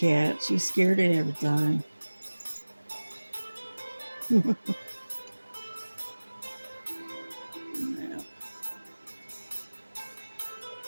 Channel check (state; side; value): inverted; both; correlation -1.00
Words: She's scared of everything. Yeah.